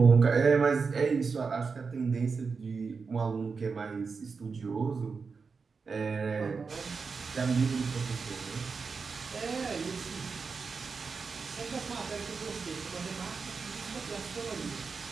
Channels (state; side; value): quieter; left; 5.0 dB